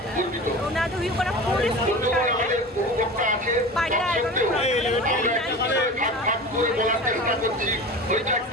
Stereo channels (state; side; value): normal; both; correlation 0.33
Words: তো ওনাদের হুই করা পুলিশ আমাদের উপভোক্তা আছে ভাগ করে বলার চেষ্টা করছি ওইটা